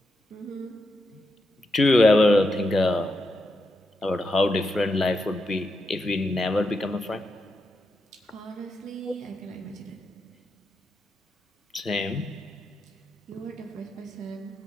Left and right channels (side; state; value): both; normal; correlation 0.85